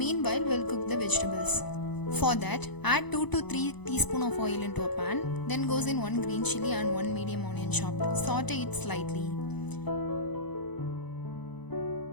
we'll cook the vegetables. For that, add 2 to 3 teaspoons of oil into a pan. Then goes in 1 green chili and 1 medium onion chopped. Saute it slightly.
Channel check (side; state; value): right; late; 0.99 ms